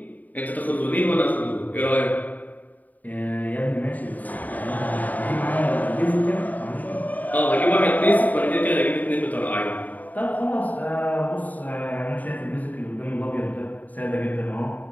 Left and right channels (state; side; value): late; right; 0.078 ms